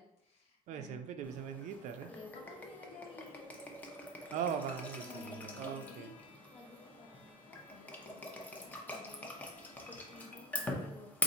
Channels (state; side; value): normal; both; correlation 0.23